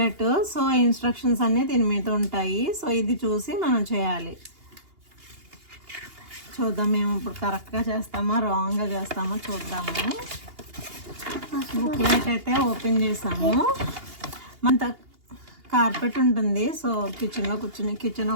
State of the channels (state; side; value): late; left; 2.8 ms